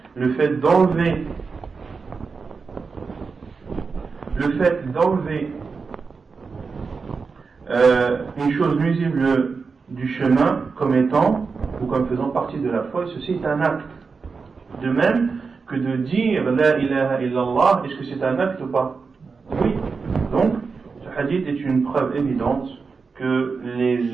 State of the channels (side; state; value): left; quieter; 4.9 dB